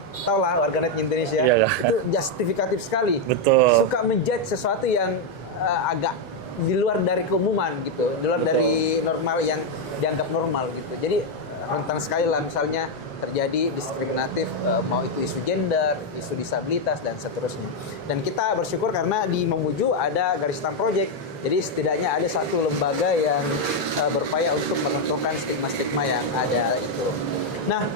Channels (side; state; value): both; normal; correlation 0.02